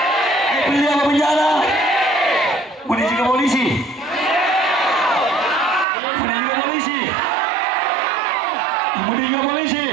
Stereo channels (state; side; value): drops out; left; at 5.9 s